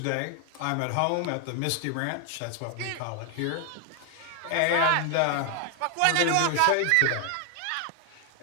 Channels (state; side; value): different; both; correlation 0.00